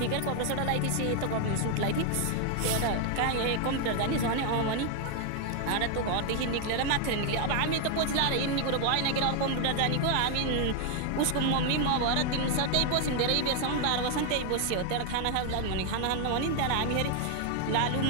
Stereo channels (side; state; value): both; different; correlation 0.00